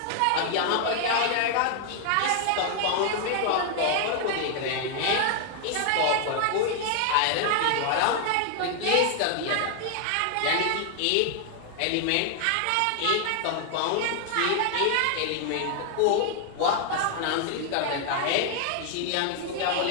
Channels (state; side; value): different; both; correlation 0.00